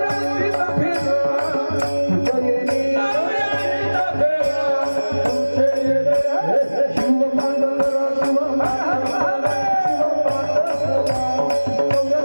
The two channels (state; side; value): inverted; both; correlation -1.00